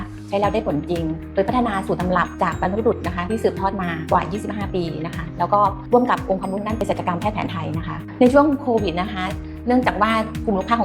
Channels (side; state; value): both; identical; correlation 1.00